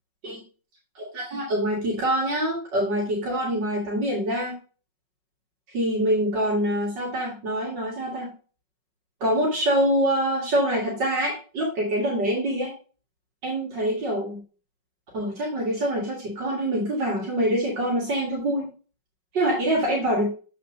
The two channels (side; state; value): left; late; 5.4 ms